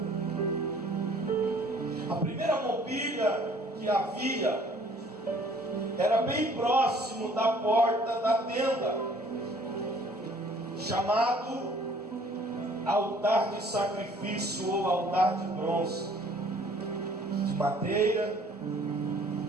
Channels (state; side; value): normal; both; correlation 0.56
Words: A primeira mobília que havia era bem próximo da porta da tenda, chamado altar de sacrifício ou altar de bronze, de madeira,